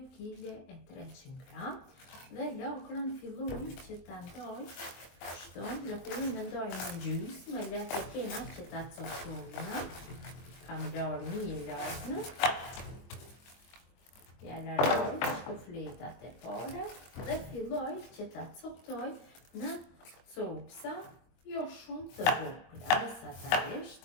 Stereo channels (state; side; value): late; right; 23 ms